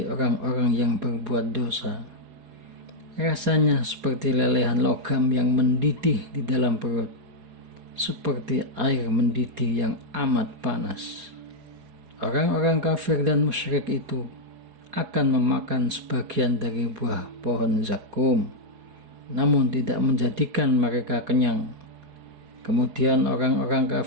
orang-orang yang berbuat dosa. Rasanya seperti lelehan logam yang mendidih di dalam perut, seperti air mendidih yang amat panas. Orang-orang kafir dan musyrik itu akan memakan sebagian dari buah pohon zakum, namun tidak menjadikan mereka kenyang. Kemudian orang-orang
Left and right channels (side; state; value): left; late; 4.7 ms